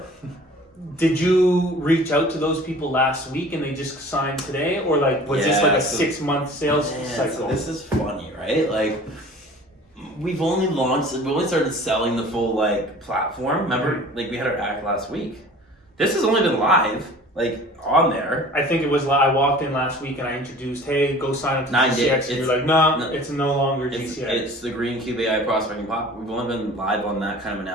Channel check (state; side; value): normal; both; correlation 0.45